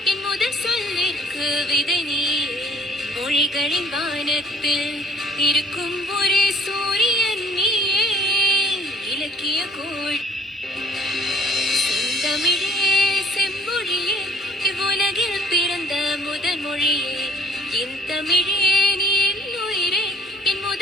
என் முதல் சொல்லிற்கு விதை நீயே. மொழிகளின் வானத்தில் இருக்கும் ஒரே சூரியன் நீயே. இலக்கிய கோள் தமிழே செம்மொழியே, இவ்வுலகில் பிறந்த முதல் மொழியே. என் தமிழே நீ என் உயிரே, என்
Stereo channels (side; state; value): both; normal; correlation 0.53